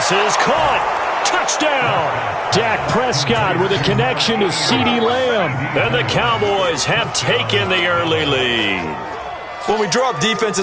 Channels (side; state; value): both; identical; correlation 1.00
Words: is caught. Touchdown! Dak Prescott with a connection to CeeDee Lamb. And the Cowboys have taken the early lead. When we draw up